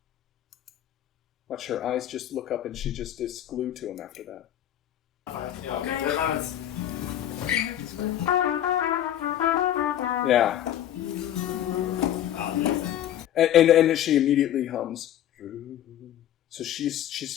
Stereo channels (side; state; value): right; quieter; 11.4 dB